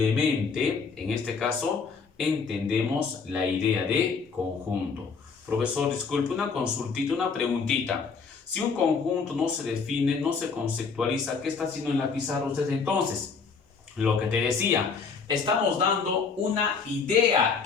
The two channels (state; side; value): quieter; right; 5.3 dB